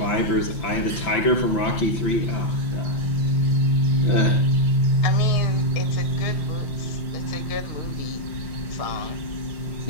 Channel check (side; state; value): right; late; 5.6 ms